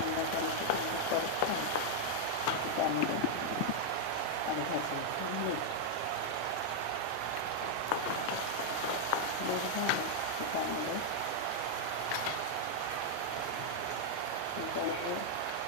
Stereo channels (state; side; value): different; both; correlation -0.01